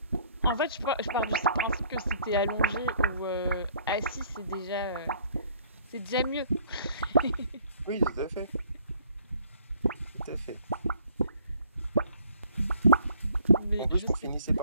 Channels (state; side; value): inverted; both; correlation -0.59